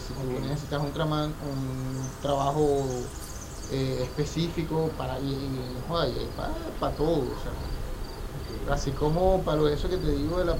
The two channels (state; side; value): identical; both; correlation 1.00